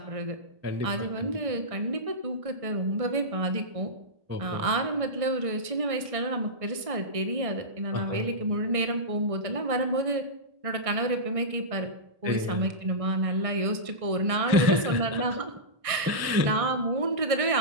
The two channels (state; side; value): late; left; 1.6 ms